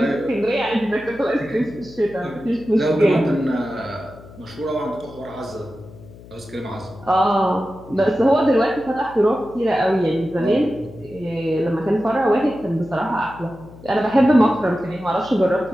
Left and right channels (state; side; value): noise; left; hum, 19 dB below the sound